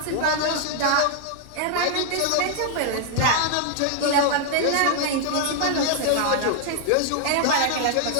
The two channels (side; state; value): both; different; correlation 0.00